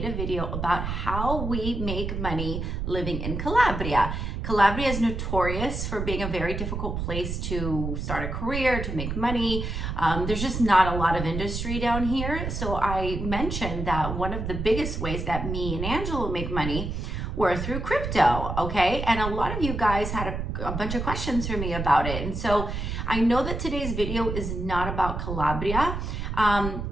a video about how we make money living in Calabria. Calabria is notorious for being a very difficult place to start a career, to make money. There's just not a lot of industry down here. So I mentioned that one of the biggest ways that me and Angela make money were through crypto, okay? And a lot of you guys had a bunch of questions for me about it. And so I know that today's video is not about Calabria,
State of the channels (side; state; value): right; noise; rumble, 4 dB below the sound